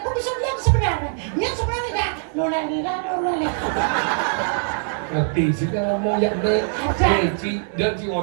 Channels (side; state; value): left; silent; 64 dB below the other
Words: aku bisa bilang sebenarnya. Yang sebenarnya enggak. Lola. ngerti sih kan ngomong yang deh ci dan ci